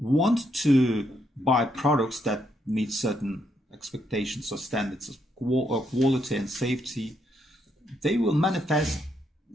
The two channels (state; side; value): normal; both; correlation 0.76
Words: to buy products that meet certain expectations or standards of quality and safety, they will manifest